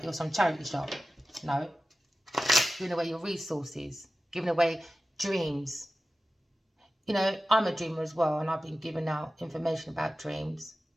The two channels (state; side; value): normal; both; correlation 0.95